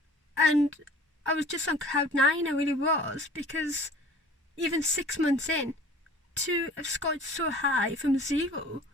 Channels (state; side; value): normal; both; correlation 0.47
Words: And I was just on cloud 9, I really was, because even 6 months in, to have scored so high from 0